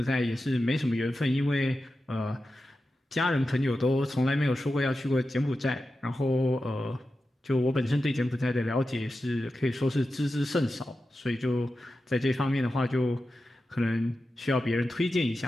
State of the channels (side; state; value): both; normal; correlation 0.92